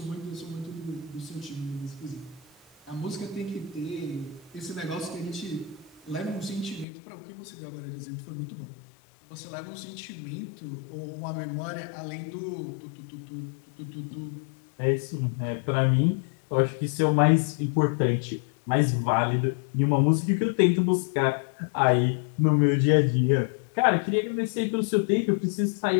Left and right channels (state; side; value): drops out; right; at 6.9 s